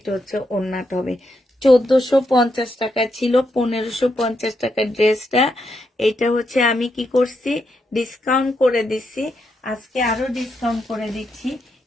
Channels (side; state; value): both; normal; correlation 0.81